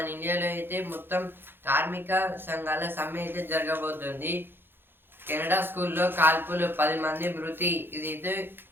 ఇండియాలో అయితే మొత్తం కార్మిక సంఘాల సమ్మె అయితే జరగబోతుంది. కెనడా స్కూల్లో కాల్పులు 10 మంది మృతి. ఇదైతే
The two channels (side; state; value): left; late; 0.10 ms